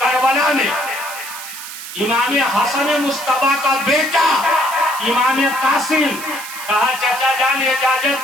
करबला में इमाम हसन मुस्तफा का बेटा इमाम कासिम कहा, चाचा जान इजाजत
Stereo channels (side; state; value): right; noise; hiss, 11 dB below the sound